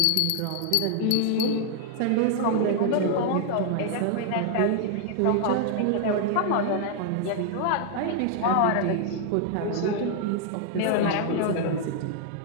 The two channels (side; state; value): both; different; correlation 0.00